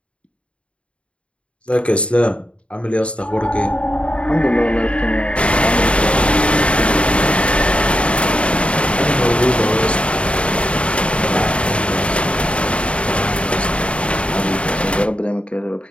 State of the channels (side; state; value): right; late; 0.060 ms